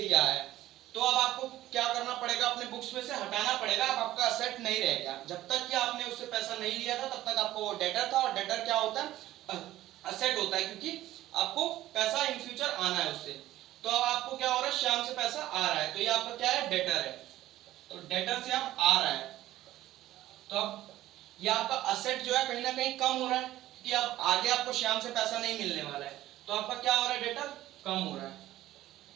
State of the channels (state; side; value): quieter; left; 14.7 dB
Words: है, तो अब आपको क्या करना पड़ेगा, अपने बुक्स में से हटाना पड़ेगा, अब आपका असेट नहीं रहेगा। जब तक कि आपने उससे पैसा नहीं लिया था तब तक आपको वो डेटर था, और डेटर क्या होता है, असेट होता है, क्योंकि आपको पैसा इन फ्यूचर आना है उससे। तो अब आपको क्या हो रहा है, श्याम से पैसा आ रहा है, तो ये आपका क्या है, डेटर है, तो डेटर से आप आ रहा है, तो अब ये आपका असेट जो है कहीं ना कहीं कम हो रहा है, कि अब आगे आपको श्याम से पैसा नहीं मिलने वाला है, तो आपका क्या हो रहा है, डेटर कम हो रहा है,